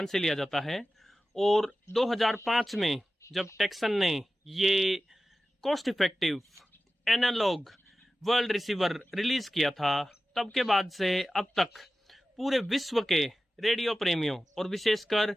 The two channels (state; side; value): normal; both; correlation 0.94